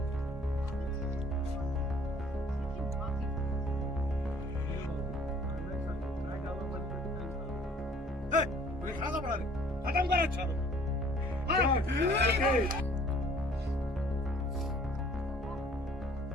खत्म कर अच्छा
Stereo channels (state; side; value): normal; both; correlation 0.55